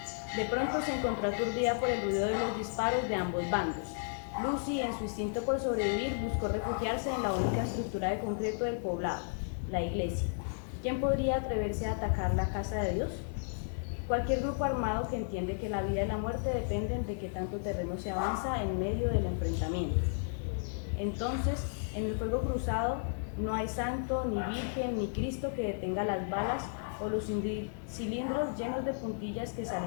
De pronto se encontró aturdida por el ruido de los disparos de ambos bandos. Lucy, en su instinto por sobrevivir, buscó refugiarse en la única estructura de concreto del poblado, la iglesia. ¿Quién podría atreverse a atacar la casa de Dios? Cualquier grupo armado que entiende que la vida y la muerte dependen de qué tanto terreno se avanza en medio del enfrentamiento. Entonces, en el fuego cruzado no hay santo, ni virgen, ni Cristo que detenga las balas o los cilindros llenos de puntillas que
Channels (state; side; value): silent; right; digital silence